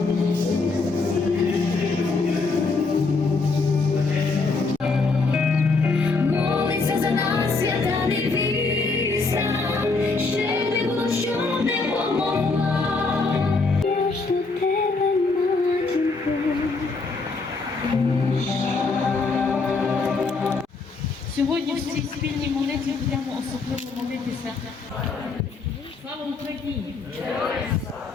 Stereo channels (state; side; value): quieter; right; 4.0 dB